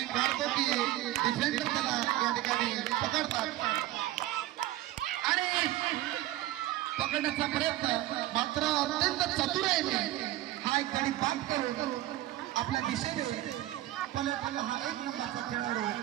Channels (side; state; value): left; quieter; 15.6 dB